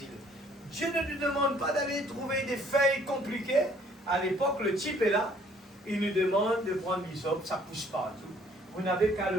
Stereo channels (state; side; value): normal; both; correlation 0.60